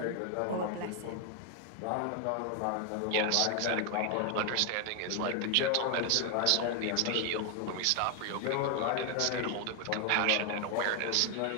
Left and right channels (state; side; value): different; both; correlation 0.01